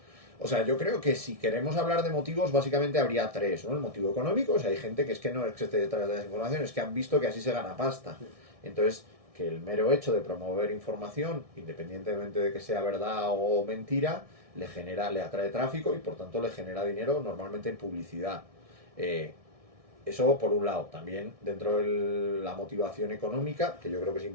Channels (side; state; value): left; late; 1.6 ms